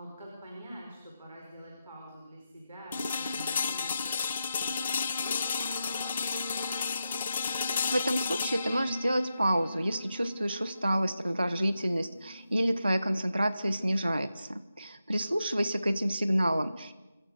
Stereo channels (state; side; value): inverted; both; correlation -0.88